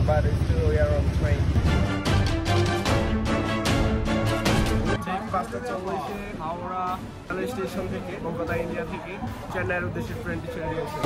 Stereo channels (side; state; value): both; identical; correlation 1.00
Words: but still we are on train. বাসটা চলছে হাওড়া রেল স্টেশন থেকে, কলকাতা ইন্ডিয়া থেকে চেন্নাইয়ের উদ্দেশ্যে ট্রেনটি ছেড়ে দিয়েছে।